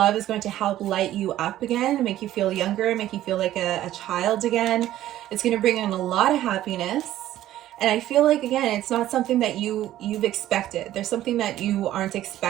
is going to help light you up again, make you feel younger, make you feel like a child again. It's going to bring in a lot of happiness. And I feel like, again, it's not something that you've expected. There's something that you aren't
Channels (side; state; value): left; quieter; 13.5 dB